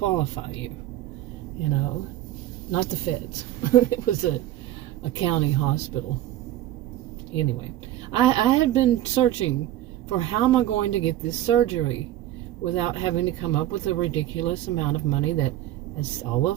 you, you know, not the feds. It was a county hospital. Anyway, I had been searching for how am I going to get this surgery without having to come up with a ridiculous amount of money that, as all of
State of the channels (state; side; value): quieter; left; 13.6 dB